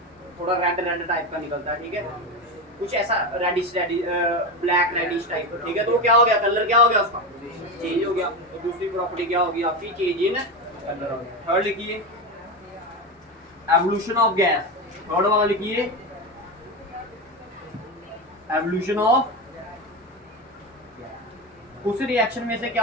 थोड़ा रेड टाइप का निकलता है, ठीक है, कुछ ऐसा रेडिश ब्लैक रेडिश टाइप, ठीक है। तो क्या हो गया, कलर क्या हो गया उसका, चेंज हो गया। तो दूसरी प्रॉपर्टी क्या होगी आपकी, चेंज इन कलर हो गया। थर्ड लिखिए, एवोल्यूशन ऑफ गैस, थर्ड वाला लिखिए, एवोल्यूशन ऑफ, उस रिएक्शन में से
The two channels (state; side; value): normal; both; correlation 0.18